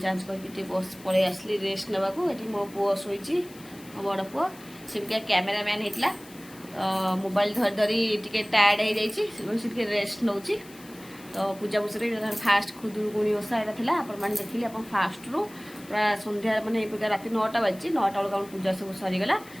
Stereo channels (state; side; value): noise; left; hiss, 21 dB below the sound